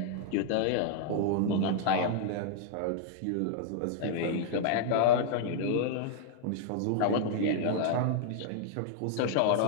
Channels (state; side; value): different; both; correlation -0.01